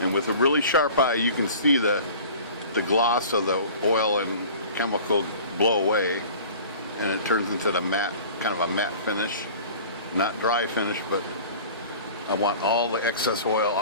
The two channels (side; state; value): both; inverted; correlation -0.43